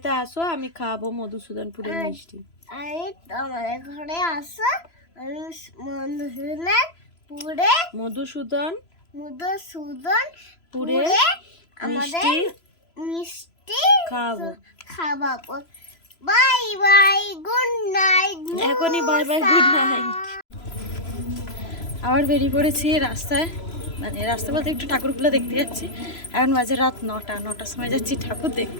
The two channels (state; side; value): late; right; 3.0 ms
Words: আসো, আমি খাবো মধুসূদনপুরের মিষ্টি। আমি তোমাদের ঘরে আসো, আমি মধুসূদনপুরে আমাদের মিষ্টি খাওয়াবো। Bye bye, good night. এখনই বাই বাই, গুড নাইট। আবার বেরিয়ে পড়েছি রাস্তায় মানে রাস্তা বলতে একটু ঠাকুরগুলো দেখতে যাচ্ছি। এখন বাজে রাত 9টার সময় যাচ্ছি ঠাকুর